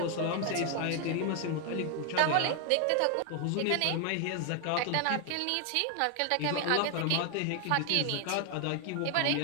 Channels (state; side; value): different; both; correlation 0.00